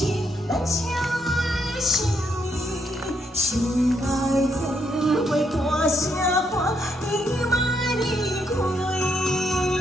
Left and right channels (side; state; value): both; normal; correlation 0.76